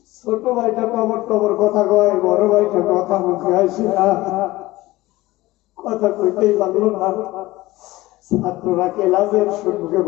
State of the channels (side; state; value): right; quieter; 18.6 dB